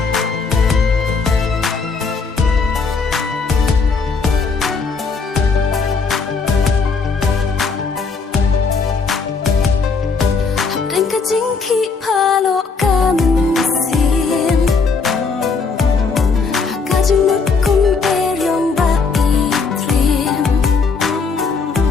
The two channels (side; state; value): right; quieter; 4.7 dB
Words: Jing ki palo kamen sim. Kajing mut kum eryong ba itrim.